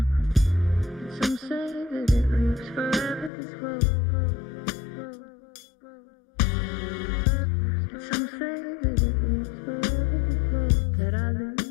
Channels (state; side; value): drops out; right; at 3.3 s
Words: Some say that it lives forever, this road. Some say that it lives forever, this road that I